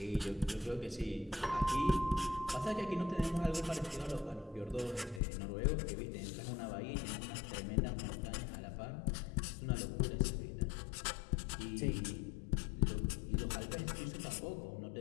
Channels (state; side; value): drops out; right; at 5.2 s